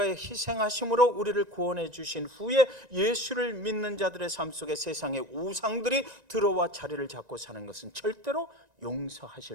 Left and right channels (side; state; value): left; late; 1.9 ms